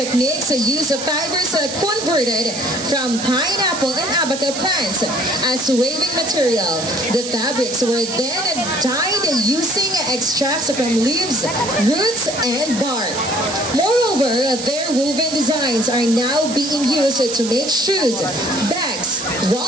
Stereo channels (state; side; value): noise; right; hiss, 7 dB below the sound